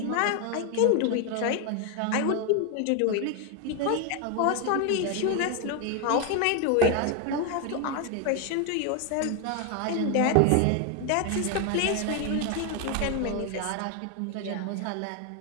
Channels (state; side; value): different; both; correlation 0.01